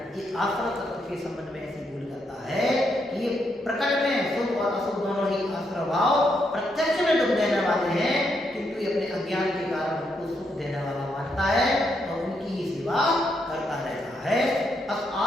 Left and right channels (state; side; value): normal; both; correlation 0.79